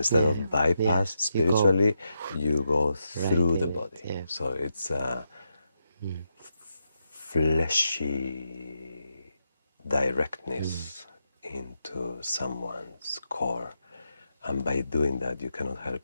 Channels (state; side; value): inverted; both; correlation -0.84